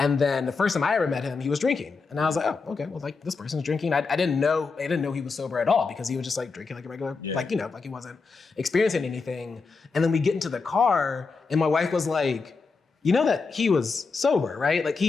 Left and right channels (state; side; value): quieter; right; 4.5 dB